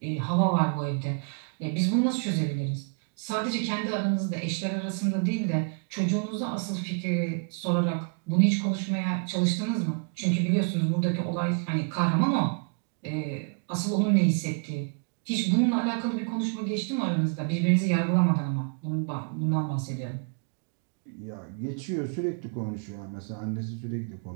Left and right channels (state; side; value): quieter; left; 37.6 dB